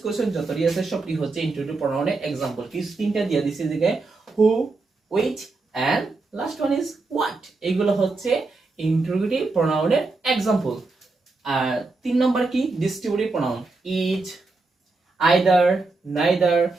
কোশ্চেন যতটি আছে সবটি হচ্ছে ইনটুইটিভ প্রনাউনের এক্সাম্পল। কি তিনটা দিয়ে দিছি দিকে, who, which and last one is what. এগুলো হচ্ছে ইনটুইটিভ প্রনাউনের এক্সাম্পল। আর 3 নম্বর কি? Distributive pronoun. Each, either, neither,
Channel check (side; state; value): left; quieter; 3.6 dB